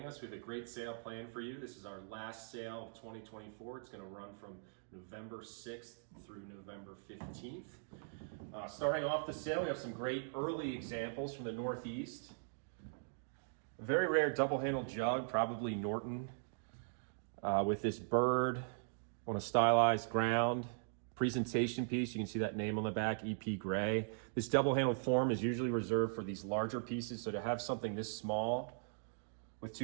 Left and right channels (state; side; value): silent; left; digital silence